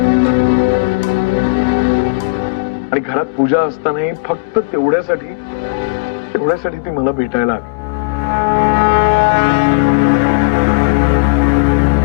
आणि घरात पूजा असतानाही फक्त तेवढ्यासाठी ती मला भेटायला आली.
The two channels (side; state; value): right; quieter; 29.2 dB